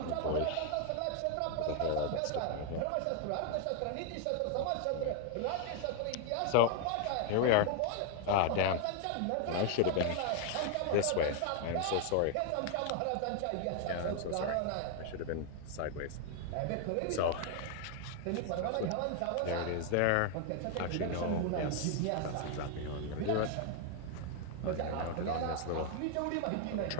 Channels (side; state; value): both; different; correlation 0.00